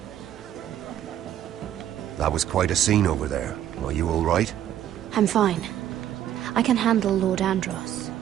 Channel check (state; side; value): quieter; left; 11.2 dB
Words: That was quite a scene over there. Are you all right? I'm fine. I can handle Lord Andros.